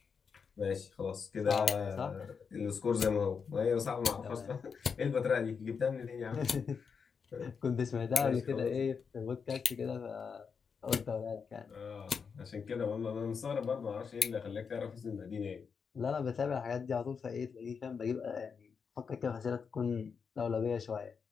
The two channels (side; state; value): right; quieter; 6.0 dB